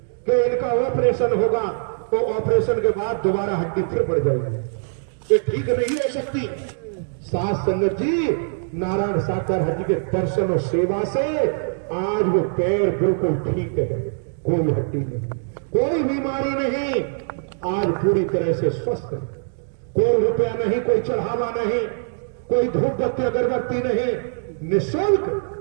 कि इनका ऑपरेशन होगा तो ऑपरेशन के बाद दोबारा हड्डी फिर बढ़ जाएगी, ये ठीक नहीं हो सकती। साथ संगत जी नारायण साकर हरि के दर्शन और सेवा से आज वो पैर बिल्कुल ठीक है, कोई हड्डी नहीं, कोई बीमारी नहीं, आज पूरी तरह से स्वस्थ है। कोई रुपया नहीं, कोई चढ़ावा नहीं, कोई धूप बत्ती अगरबत्ती नहीं,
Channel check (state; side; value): silent; left; digital silence